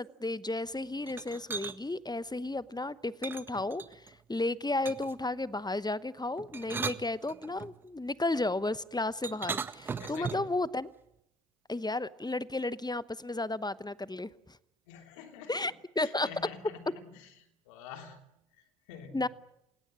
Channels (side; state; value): both; normal; correlation 0.59